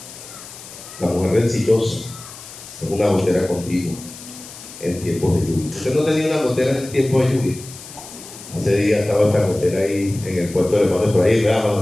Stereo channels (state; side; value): noise; left; hiss, 15 dB below the sound